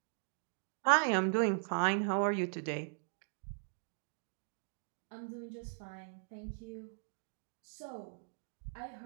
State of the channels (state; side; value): silent; left; digital silence